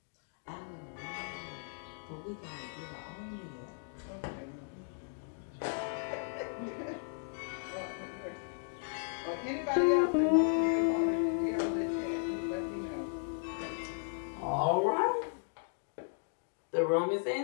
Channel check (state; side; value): silent; right; digital silence